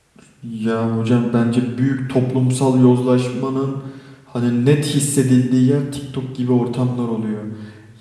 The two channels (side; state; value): both; identical; correlation 1.00